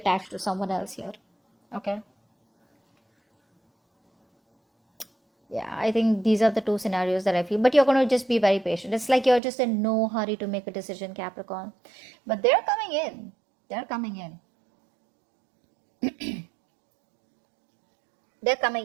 to someone else here. Okay. Yeah, I think these are the two scenarios that I feel. But you're going to just be very patient. It's like you're just in no hurry to make a decision, Capricorn. But they're coming in. They're coming in. They're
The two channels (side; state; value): left; drops out; at 9.4 s